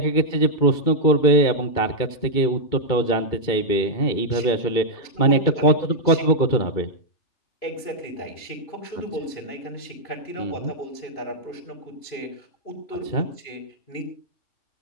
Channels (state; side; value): late; right; 2.3 ms